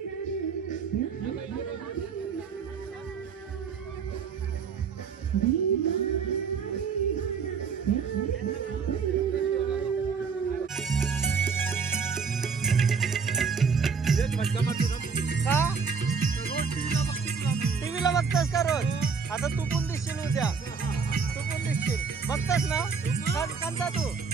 टीव्हीला बघतास का रोज? आता तू पण दिसशील उद्या. तू पण दिसशील. बघतास ना? कोणता तू?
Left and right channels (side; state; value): left; quieter; 5.7 dB